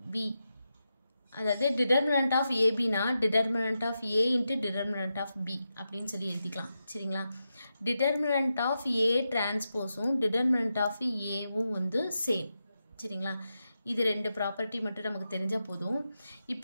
அதாவது determinant of AB னா determinant of A into determinant of B அப்படின்னு சொல்லி எழுதிக்கலாம் சரிங்களா? determinant of A transpose-உம் determinant of A-வும் வந்து சேம் சரிங்களா? இது ரெண்டு ப்ராப்பர்ட்டி மட்டும் நமக்கு தெரிஞ்சா போதும்.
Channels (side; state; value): both; inverted; correlation -0.88